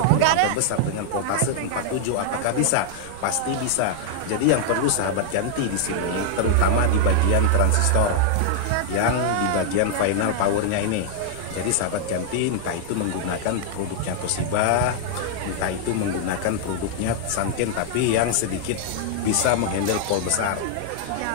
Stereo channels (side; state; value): both; different; correlation -0.01